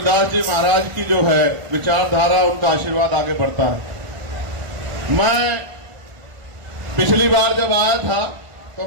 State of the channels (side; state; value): left; late; 1.5 ms